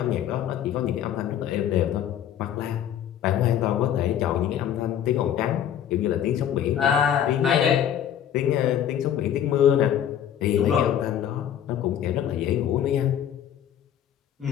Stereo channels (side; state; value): right; quieter; 10.0 dB